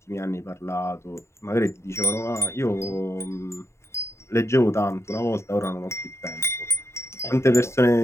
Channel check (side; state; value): right; late; 0.13 ms